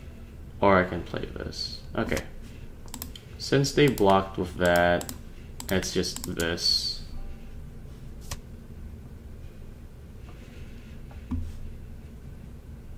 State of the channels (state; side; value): identical; both; correlation 1.00